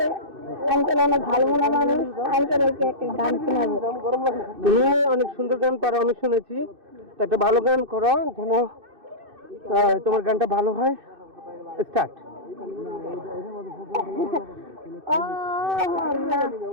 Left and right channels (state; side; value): late; left; 2.6 ms